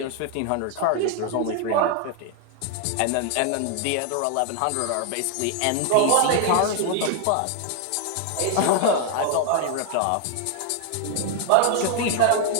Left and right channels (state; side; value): different; both; correlation 0.00